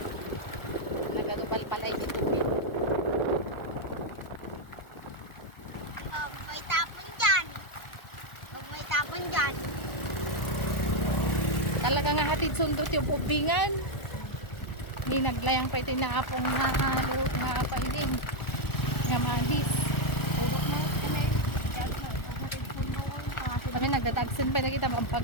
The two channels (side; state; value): right; late; 1.4 ms